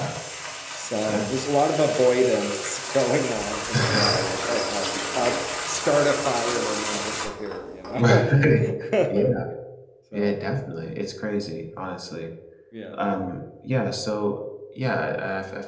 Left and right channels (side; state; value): both; identical; correlation 1.00